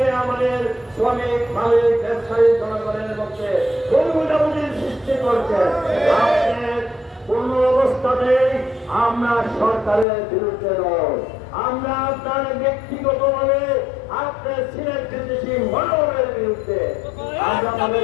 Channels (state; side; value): drops out; right; at 10.1 s